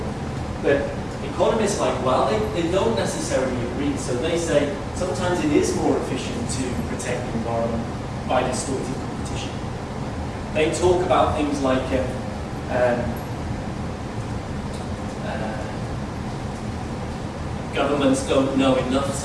But economists are like, well, they don't necessarily agree. So they say sometimes it is more efficient to protect the environment by distorting competition. They talk about things like governments don't know enough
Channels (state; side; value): identical; both; correlation 1.00